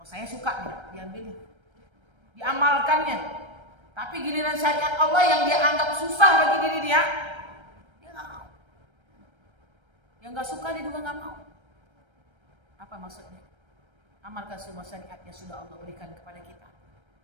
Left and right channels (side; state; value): left; late; 1.3 ms